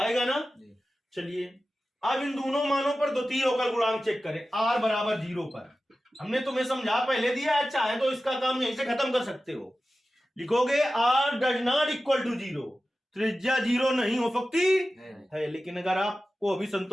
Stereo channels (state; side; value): normal; both; correlation 0.94